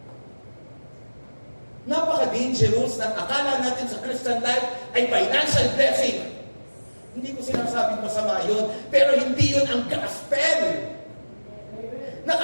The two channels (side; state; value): both; inverted; correlation -1.00